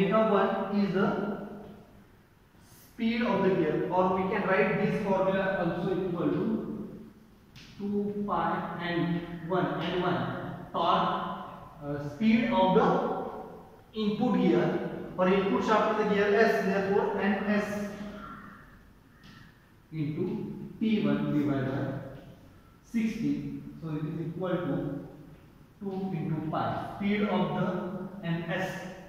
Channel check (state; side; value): identical; both; correlation 1.00